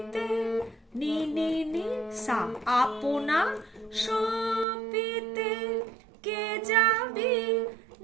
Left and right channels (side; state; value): left; drops out; at 4.7 s